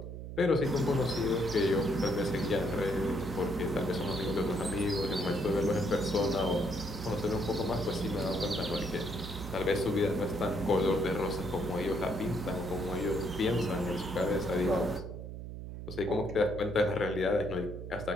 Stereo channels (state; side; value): noise; right; hum, 9 dB below the sound